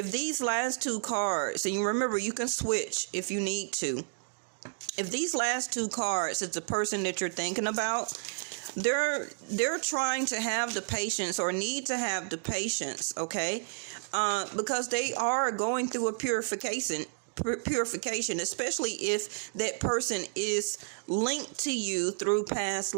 these last two cards, and you remember you can switch if you need to. If these last two cards is the person that you're thinking about, they're trying to have the patience or need to have the patience, okay? Because they are going through a purification, especially if that person is linked to you through past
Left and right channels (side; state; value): left; silent; digital silence